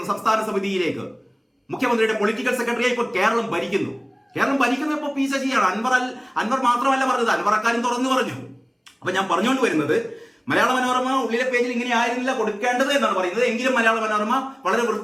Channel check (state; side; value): identical; both; correlation 1.00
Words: സംസ്ഥാന സമിതിയിലേക്ക്. മുഖ്യമന്ത്രിയുടെ പൊളിറ്റിക്കൽ സെക്രട്ടറിയായി ഇപ്പോൾ കേരളം ഭരിക്കുന്നത് ഇപ്പോൾ പി ശശിയാണ്. അൻവർ മാത്രമല്ല പറഞ്ഞത്, അൻവർ അക്കാര്യം തുറന്നു പറഞ്ഞു. അപ്പൊ ഞാൻ പറഞ്ഞുകൊണ്ട് വരുന്നത്, മലയാള മനോരമ ഉള്ളിലെ പേജിൽ ഇങ്ങനെ ആയിരുന്നില്ല കൊടുക്കേണ്ടത് എന്നാണ് പറയുന്നത്. എങ്കിലും മലയാള മനോരമ വളരെ